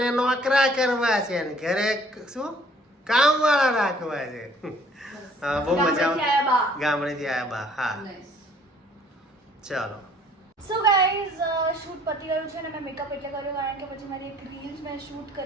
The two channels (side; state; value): both; normal; correlation 0.58